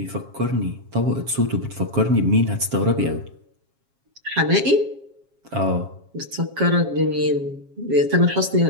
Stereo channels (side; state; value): left; late; 7.4 ms